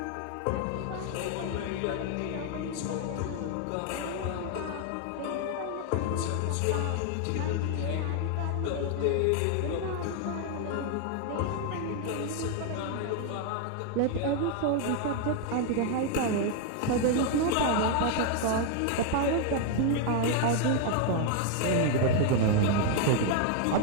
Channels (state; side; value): different; both; correlation 0.00